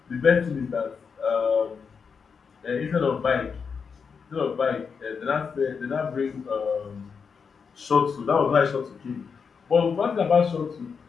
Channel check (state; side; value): quieter; right; 5.9 dB